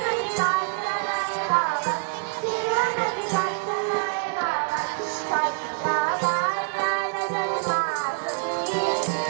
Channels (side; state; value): left; silent; 61 dB below the other